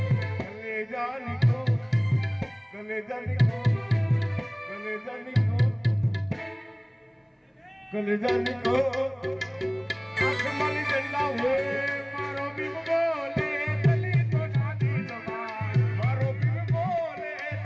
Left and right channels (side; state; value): both; identical; correlation 1.00